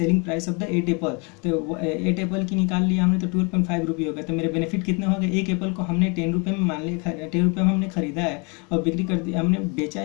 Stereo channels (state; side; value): quieter; right; 32.1 dB